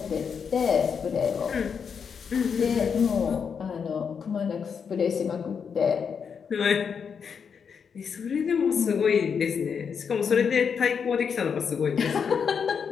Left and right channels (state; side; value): quieter; right; 6.5 dB